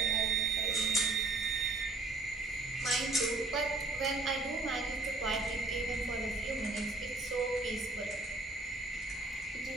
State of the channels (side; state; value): left; quieter; 3.1 dB